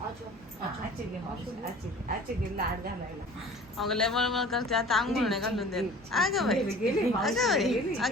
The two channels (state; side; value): normal; both; correlation 0.45